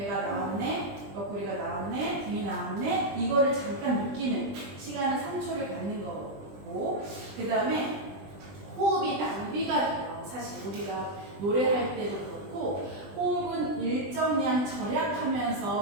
나왔네, 옆구리가 나왔네, 등이 나왔네 이거를 잠깐 느끼는 시간은 3초를 갖는 거고 그 다음에 호흡이 낭비가 돼요. 사실 우리가 노래할 때도 그렇고 호흡은 일정량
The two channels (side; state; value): left; late; 20 ms